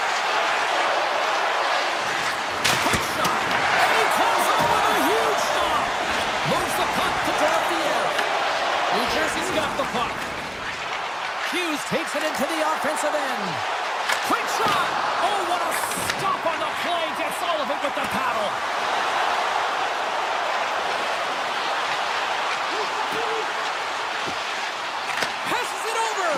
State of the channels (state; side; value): identical; both; correlation 1.00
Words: Quick shot! And he comes up with a huge stop! Moves the puck to Dorofiev. New Jersey's got the puck. Hughes takes it into the offensive end. Quick shot! Oh, what a stop on the play! Gets all of it with the paddle. Passes it